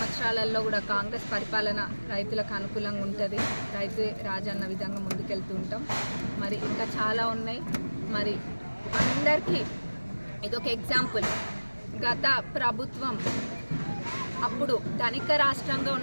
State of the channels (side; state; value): both; inverted; correlation -1.00